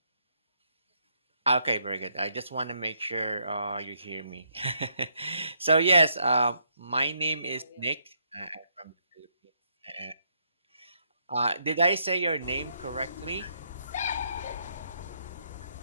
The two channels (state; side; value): inverted; both; correlation -0.75